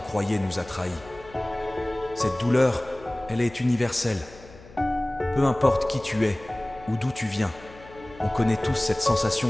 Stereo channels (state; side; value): noise; left; hum, 21 dB below the sound